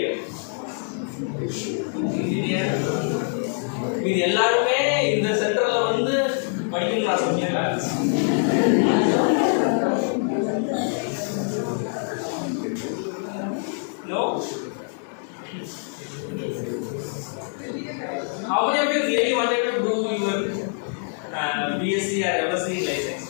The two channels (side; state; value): right; silent; 59 dB below the other